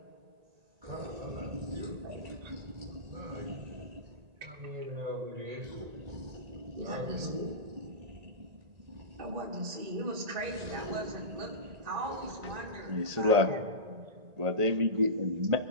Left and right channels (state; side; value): late; left; 1.8 ms